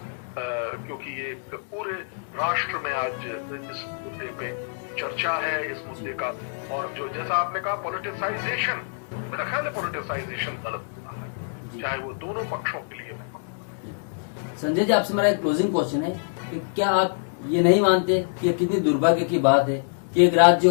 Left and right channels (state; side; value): silent; right; digital silence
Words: क्योंकि ये पूरे राष्ट्र में आज इस मुद्दे पे चर्चा है, इस मुद्दे का, और जो जैसा आपने कहा पॉलिटिसाइजेशन, मेरा ख्याल है पॉलिटिसाइजेशन गलत हुआ है, चाहे वो दोनों पक्षों के लिए। संजय जी, आपसे मेरा एक क्लोजिंग क्वेश्चन है कि क्या आप ये नहीं मानते कि कितनी दुर्भाग्य की बात है कि एक राज्य